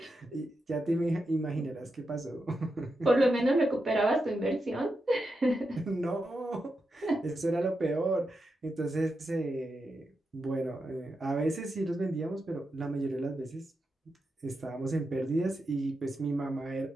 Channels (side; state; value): both; normal; correlation 0.87